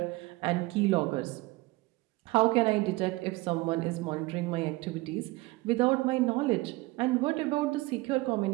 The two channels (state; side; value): quieter; left; 21.3 dB